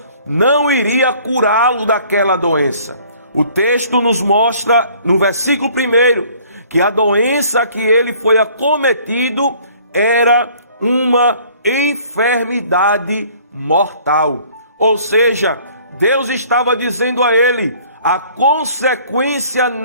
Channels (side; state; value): both; inverted; correlation -0.55